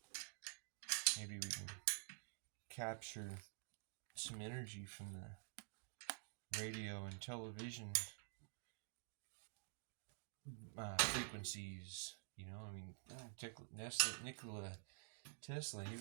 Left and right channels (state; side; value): silent; left; digital silence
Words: maybe we can capture some energy from the radio and television frequencies. You know, I mean, Nikola Tesla,